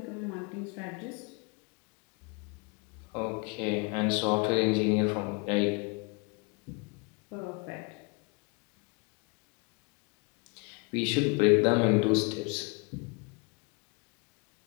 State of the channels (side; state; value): right; quieter; 31.4 dB